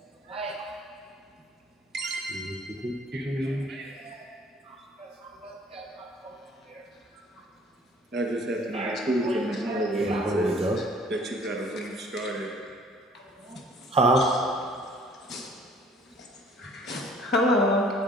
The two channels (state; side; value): normal; both; correlation 0.54